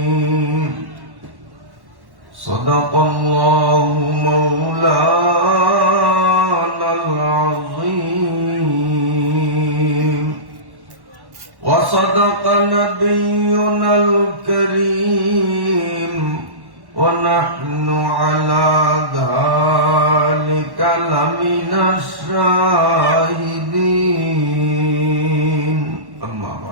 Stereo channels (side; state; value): left; late; 1.1 ms